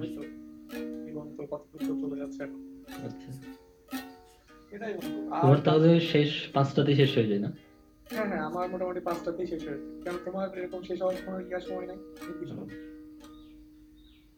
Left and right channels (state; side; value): identical; both; correlation 1.00